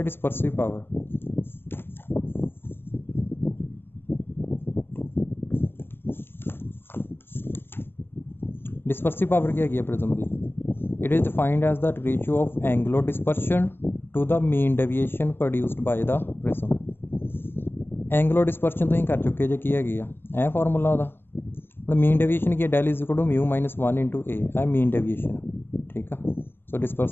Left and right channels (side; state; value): right; late; 0.10 ms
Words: ਡਿਸਪਰਸਿਵ ਪਾਵਰ। ਡਿਸਪਰਸਿਵ ਪਾਵਰ ਕੀ ਹੈਗੀ ਹੈ ਪ੍ਰਿਜ਼ਮ ਦੀ? It is defined as the ratio of angular dispersion to the mean deviation produced by the prism। Angular dispersion तुसीं कर चुके जे की हैगी आ फार्मूला ਉਹਦਾ ਹੁਣ मीन डेविएशन की del is equal to mu minus 1 into A mean deviation ठीक है। सो